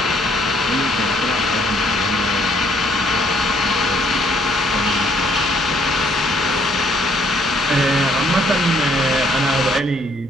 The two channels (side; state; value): both; normal; correlation 0.66